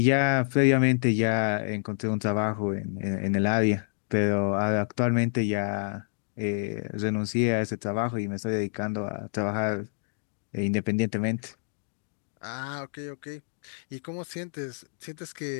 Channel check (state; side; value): silent; right; digital silence